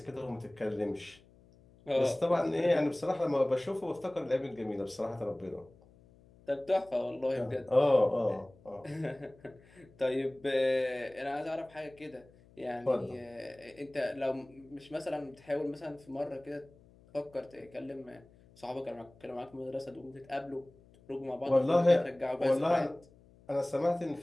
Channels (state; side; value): noise; left; hum, 26 dB below the sound